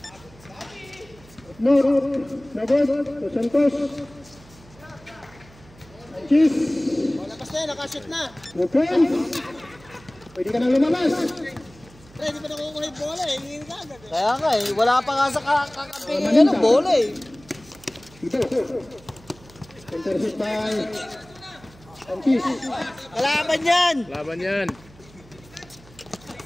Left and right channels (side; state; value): right; noise; hum, 24 dB below the sound